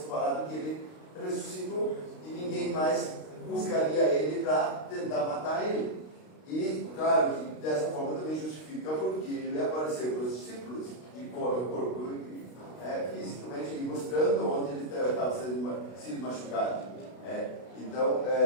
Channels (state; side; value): late; right; 32 ms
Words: falado que ele ressuscitou e ninguém mais buscaria ele para tentar matar ele. E, claro, que dessa forma também justifica porque ele apareceu para os discípulos de corpo fisicamente, mostrando onde ele estava sendo machucado. Então,